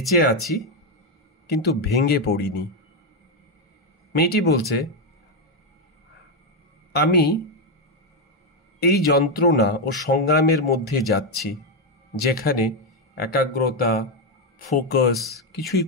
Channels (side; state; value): both; normal; correlation 0.05